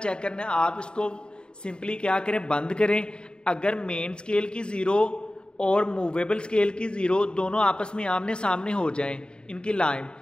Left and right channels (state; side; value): late; right; 0.050 ms